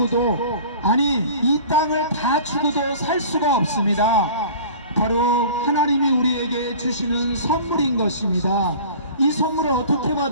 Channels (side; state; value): both; inverted; correlation -0.42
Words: 아니 이 땅을 다 주고도 살 수가 없습니다. 바로 하나님이 우리에게 주시는 선물인 것입니다. 이 선물을 어떻게